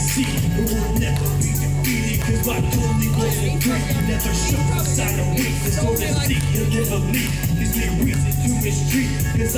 It will never be defeated because my only was a dream. Never show a sign of weakness or deceit. You'll never leave, gives me reason to mistreat, because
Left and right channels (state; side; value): identical; both; correlation 1.00